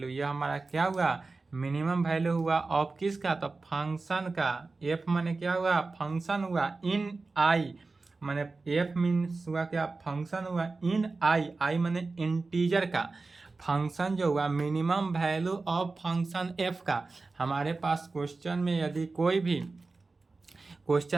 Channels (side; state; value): left; quieter; 3.8 dB